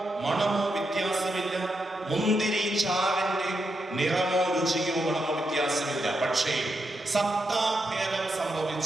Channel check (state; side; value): normal; both; correlation 0.84